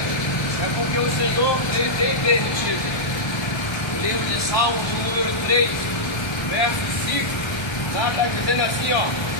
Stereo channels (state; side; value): late; right; 1.3 ms